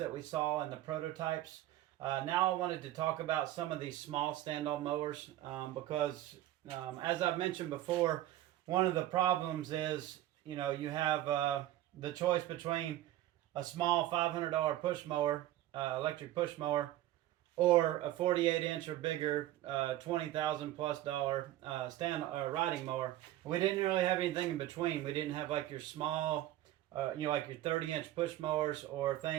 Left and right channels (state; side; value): quieter; left; 14.3 dB